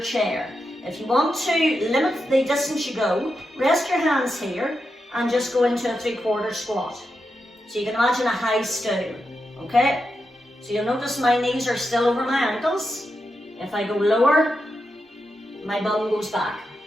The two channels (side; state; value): both; normal; correlation 0.87